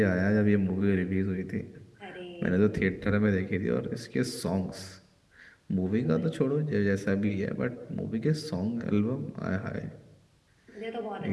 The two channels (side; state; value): both; identical; correlation 1.00